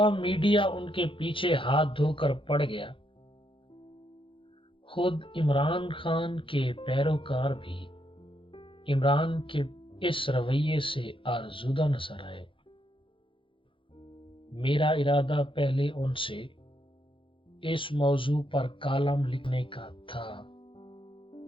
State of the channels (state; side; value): late; right; 0.25 ms